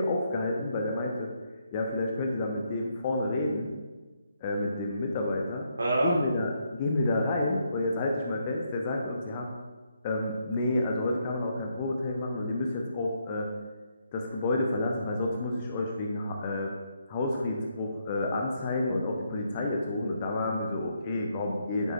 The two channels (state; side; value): inverted; both; correlation -0.76